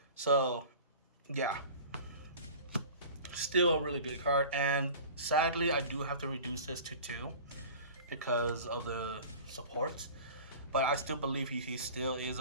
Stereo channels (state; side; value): inverted; both; correlation -0.40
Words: So yeah, still a really good card, and sadly I do have to reduce this to 2 because of the supports, but I still believe he still is